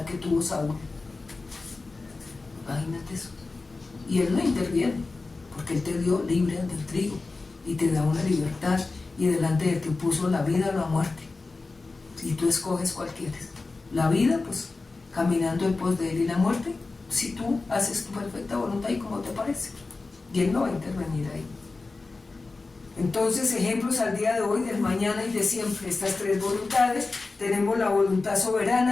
que tuvo Saúl. Imagínate eso. Y él no interviene, porque él te dio libre del trigo y te da una libertad, y delante de ti puso la vida o la muerte, y tú escoges cuál quieres. La vida, pues caminando en pos de Él y la muerte, si tú haces tu perfecta voluntad y como te parece. Y Él no va a intervenir ahí. Entonces, ejemplos al día de hoy, del mañana y de siempre, estas tres voluntades. Tenemos la voluntad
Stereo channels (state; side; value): quieter; right; 3.7 dB